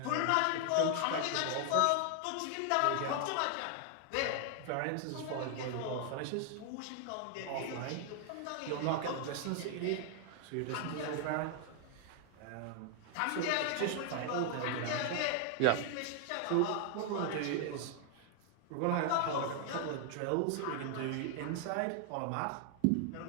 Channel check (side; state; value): both; different; correlation 0.00